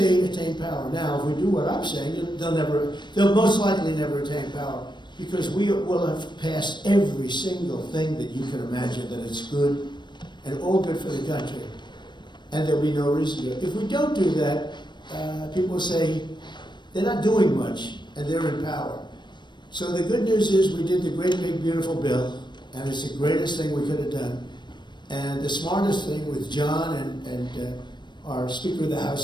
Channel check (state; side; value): late; right; 0.22 ms